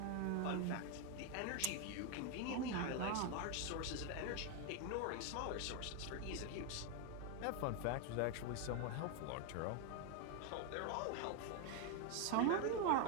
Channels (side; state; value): both; different; correlation 0.01